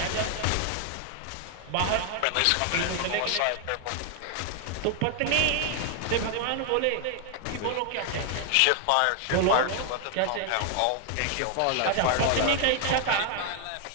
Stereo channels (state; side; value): different; both; correlation 0.00